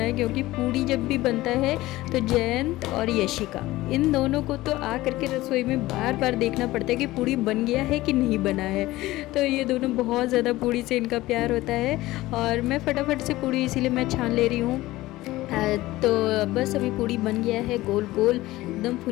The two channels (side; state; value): right; quieter; 17.7 dB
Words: क्योंकि पूड़ी जब भी बनता है तो जयंत और यशिका, इन दोनों को तो आ करके रसोई में बार बार देखना पड़ता है कि पूड़ी बन गया है कि नहीं बना है। तो ये दोनों बहुत ज़्यादा पूड़ी से इनका प्यार होता है और मैं फटाफट से पूड़ी इसीलिए मैं छान ले रही हूँ। तो बस अभी पूड़ी बन गया है, गोल गोल एकदम